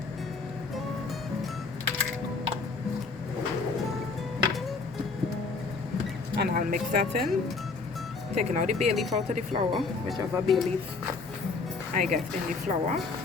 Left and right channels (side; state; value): right; quieter; 4.2 dB